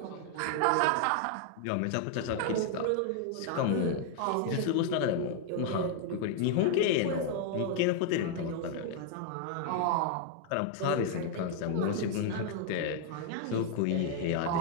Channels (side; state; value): both; different; correlation 0.00